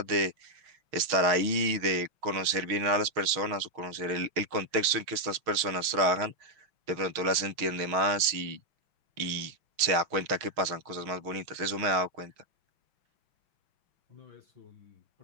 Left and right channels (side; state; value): left; late; 6.3 ms